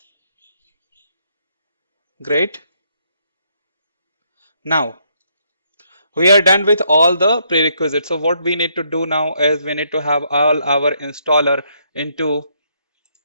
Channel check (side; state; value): both; inverted; correlation -0.73